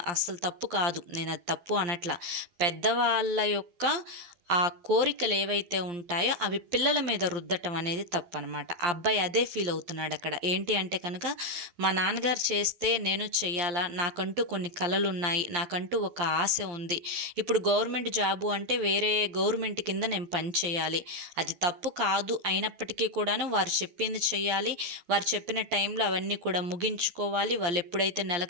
అస్సలు తప్పు కాదు, నేను అది తప్పు అనట్లా. పెద్దవాళ్ళ యొక్క ఆ కోరికలు ఏవైతే ఉంటాయో అవి పిల్లల మీద రుద్దటం అనేది తప్పు అనమాట. ఆ అబ్బాయి అదే ఫీల్ అవుతున్నాడు అక్కడ. ఏంటి అంటే కనుక, మా నాన్నగారు చేస్తే నేను చెయ్యాలా, నాకంటూ కొన్ని కలలు ఉన్నాయి, నాకంటూ ఒక ఆశ ఉంది, ఇప్పుడు గవర్నమెంట్ జాబు అంటే వేరే గవర్నమెంట్ కింద నేను పని చేయాలి, అది తప్పు కాదు, అయినప్పటికీ కూడాను వారు చెప్పింది చెయ్యాలి, వారు చెప్పిన టైంలో అవన్నీ కూడా ముగించుకోవాలి, వాళ్ళు ఎప్పుడైతే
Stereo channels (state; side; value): late; left; 12 ms